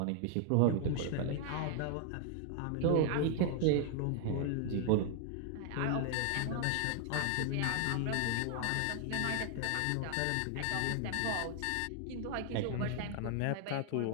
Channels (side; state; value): both; different; correlation 0.00